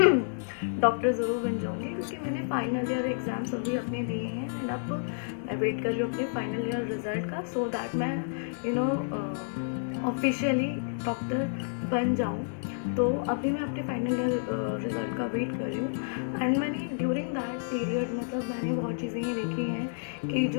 डॉक्टर ज़रूर बन जाऊँगी, क्योंकि मैंने फाइनल ईयर एग्ज़ाम्स अभी अपने दिए हैं एंड अब मैं वेट कर रही हूँ अपने फाइनल ईयर रिज़ल्ट का, सो दैट मैं ऑफिशियली डॉक्टर बन जाऊँ। तो अभी मैं अपने फाइनल ईयर रिज़ल्ट का वेट कर रही हूँ एंड मैंने ड्यूरिंग दैट पीरियड मतलब मैंने बहुत चीज़ें ये देखी हैं कि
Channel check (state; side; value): silent; right; digital silence